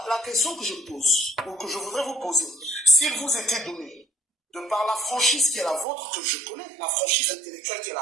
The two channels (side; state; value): left; drops out; at 5.9 s